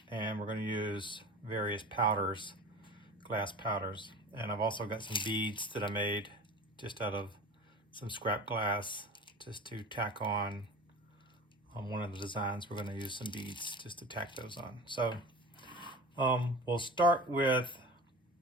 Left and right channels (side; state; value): both; normal; correlation 0.35